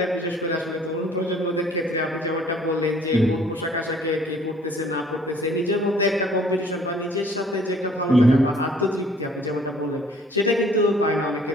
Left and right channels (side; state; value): both; normal; correlation 0.56